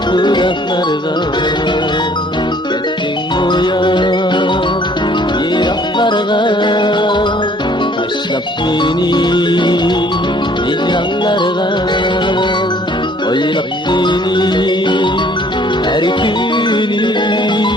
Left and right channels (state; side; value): normal; both; correlation 0.58